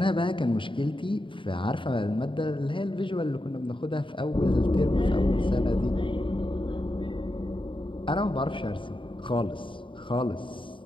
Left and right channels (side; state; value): right; late; 0.25 ms